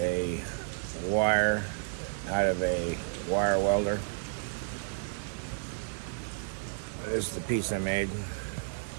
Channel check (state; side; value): silent; left; digital silence